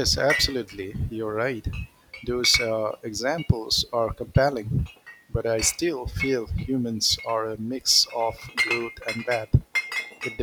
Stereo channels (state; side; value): identical; both; correlation 1.00